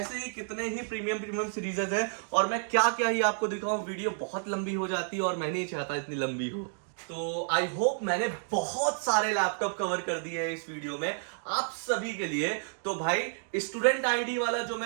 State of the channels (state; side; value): silent; left; digital silence